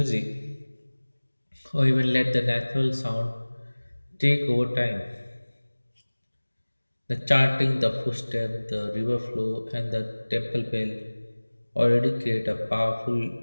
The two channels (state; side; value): inverted; both; correlation -1.00